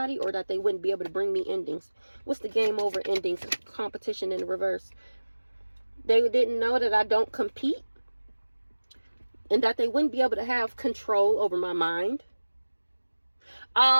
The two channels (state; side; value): inverted; both; correlation -1.00